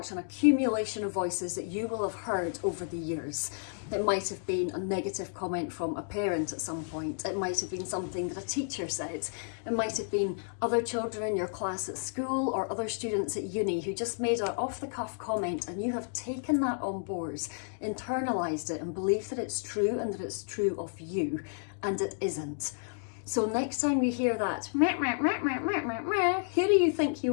an accumulation of voices that you will have heard over the years. It might have been a negative comment from a parent at some point. It might have been something that a teacher said. It might have been other children in your class at school or other students at uni who just made an off-the-cuff comment, and you have taken that on board, internalised it and believed that it's true and that it's true of you, and it isn't. So next time you hear that, meh, meh, meh, meh, meh, meh, meh, who do you think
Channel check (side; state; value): right; silent; digital silence